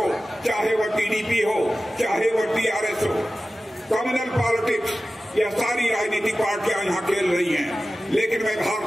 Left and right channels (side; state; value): both; normal; correlation 0.95